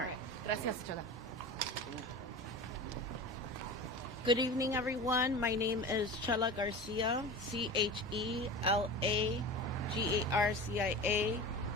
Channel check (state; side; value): normal; both; correlation 0.32